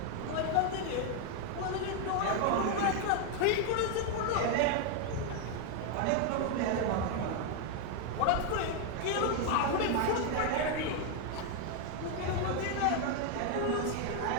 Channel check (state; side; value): different; both; correlation 0.00